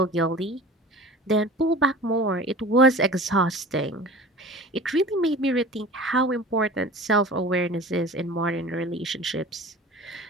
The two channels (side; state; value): both; normal; correlation 0.40